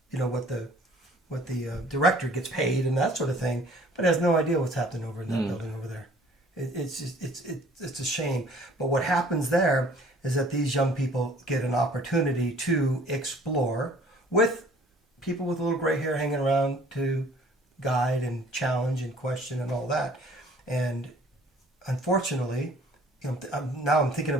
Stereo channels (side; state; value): both; normal; correlation 0.54